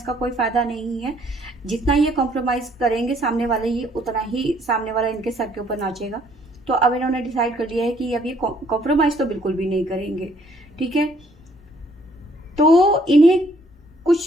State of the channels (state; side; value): normal; both; correlation 0.64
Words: का कोई फ़ायदा नहीं है। जितना ये कॉम्प्रोमाइज़ करेंगे सामने वाले, ये उतना ही सामने वाला इनके सर के ऊपर नाचेगा। तो अब इन्होंने डिसाइड कर लिया है कि अब ये कॉम्प्रोमाइज़ तो बिल्कुल भी नहीं करेंगे। ठीक है, तो इन्हें